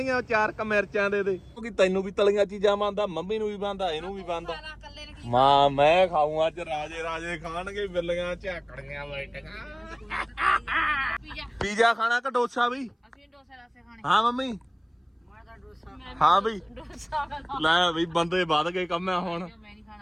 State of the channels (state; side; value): identical; both; correlation 1.00